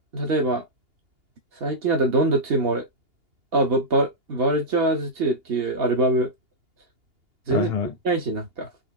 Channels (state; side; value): late; left; 2.8 ms